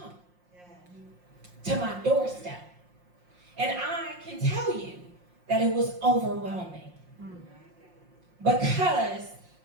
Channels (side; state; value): left; late; 5.6 ms